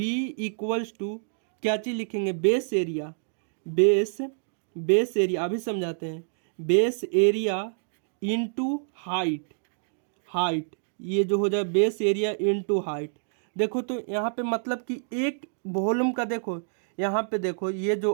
इक्वल्स टू क्या चीज़ लिखेंगे, बेस एरिया, बेस एरिया अभी समझाते हैं, बेस एरिया इनटू हाइट, ये जो हो जाए बेस एरिया इनटू हाइट। देखो तो यहाँ पे मतलब कि एक वॉल्यूम का, देखो यहाँ पे देखो ये जो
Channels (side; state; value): left; silent; digital silence